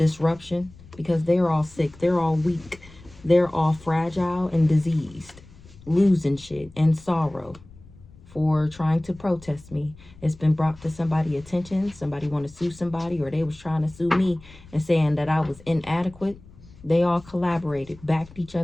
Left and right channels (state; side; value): noise; left; rumble, 22 dB below the sound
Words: because they're all sick, they're all weak, they're all fragile and diseased, losing shit and sorrow for trying to protest me. It's been brought to somebody's attention. Somebody want to sue somebody, or they was trying to sue me and saying that I was inadequate. They all collaborated, backed each